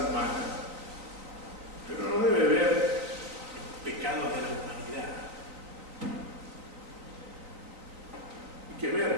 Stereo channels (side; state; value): left; late; 3.9 ms